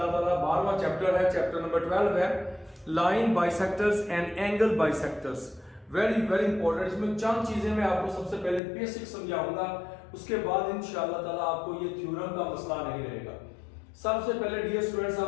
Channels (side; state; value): right; drops out; at 8.6 s